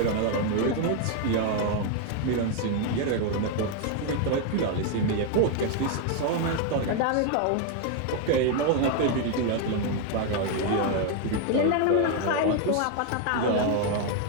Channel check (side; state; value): both; different; correlation 0.01